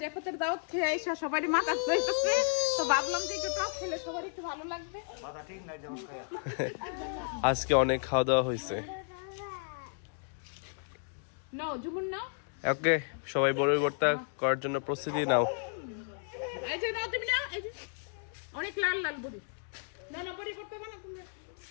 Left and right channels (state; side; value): silent; right; digital silence